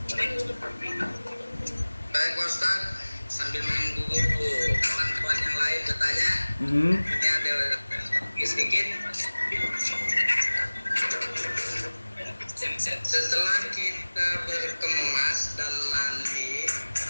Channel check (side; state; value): both; inverted; correlation -1.00